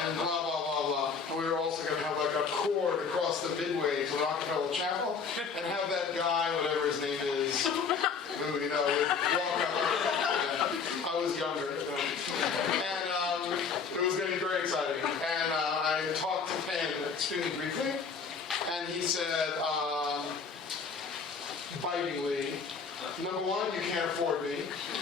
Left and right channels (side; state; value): right; quieter; 5.6 dB